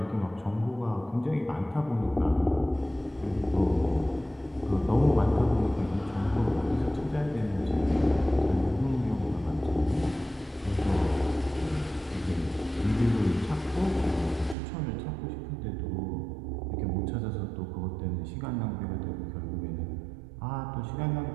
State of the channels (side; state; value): left; drops out; at 14.6 s